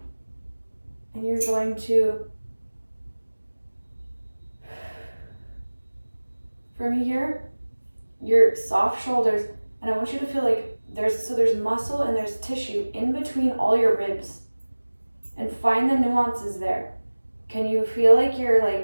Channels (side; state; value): both; inverted; correlation -1.00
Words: And you're going to, from here, your soft shoulders, and I want you to feel like there's muscle and there's tissue in between all your ribs. And find the nuances there. Can you feel like you're